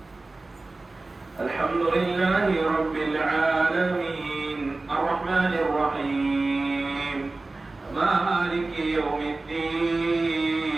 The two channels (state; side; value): quieter; left; 3.2 dB